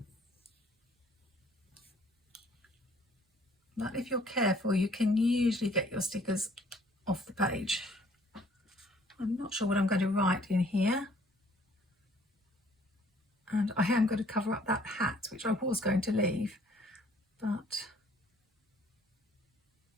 But if you're careful, you can usually get your stickers off the page. I'm not sure what I'm going to write in here. And I am going to cover up that hat, which I was going to leave, but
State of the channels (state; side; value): normal; both; correlation 0.59